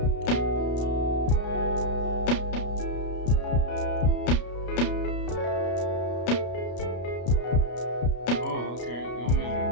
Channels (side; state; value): right; late; 33 ms